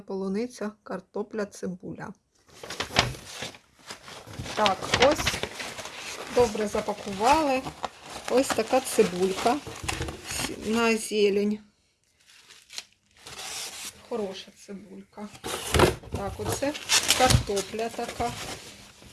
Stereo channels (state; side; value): identical; both; correlation 1.00